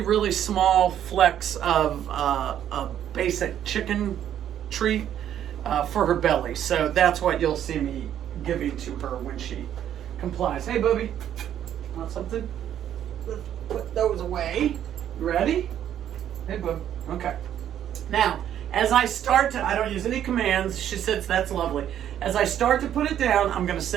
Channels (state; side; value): quieter; left; 10.4 dB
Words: small flecks of a basic chicken treat for her belly. So that's what you'll see me giving to her when she complies. Hey, Booby, want something? Let's put those away. You ready? Hey, Boob. Okay. Now, as I start to, I don't use any commands. She says that's lovely. As I start to put it down, I'm going to